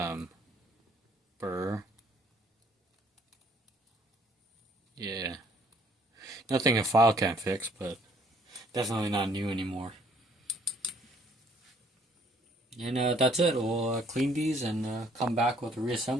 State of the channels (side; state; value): both; normal; correlation 0.62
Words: burr. Yeah, nothing a file can't fix, but definitely not new anymore. And that's it. We'll clean these and come back with a